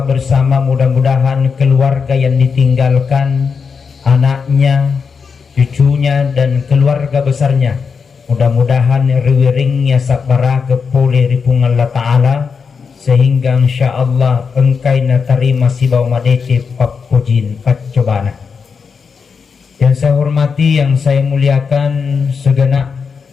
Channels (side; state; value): right; quieter; 5.7 dB